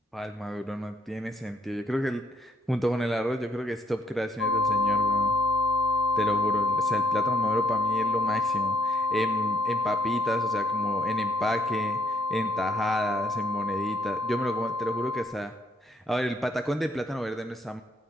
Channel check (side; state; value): both; normal; correlation 0.69